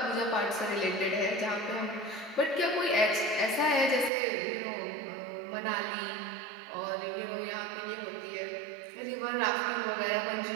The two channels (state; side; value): drops out; left; at 4.1 s